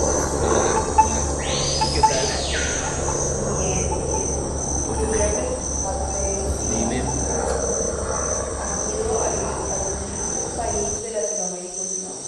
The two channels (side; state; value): both; identical; correlation 1.00